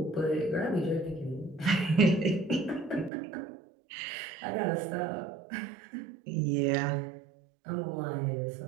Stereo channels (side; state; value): left; drops out; at 3.1 s